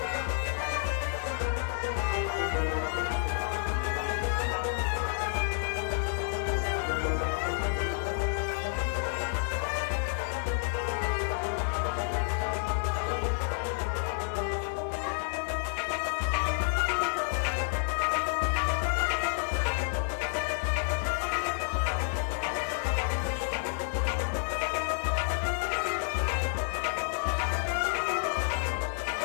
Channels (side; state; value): right; silent; 58 dB below the other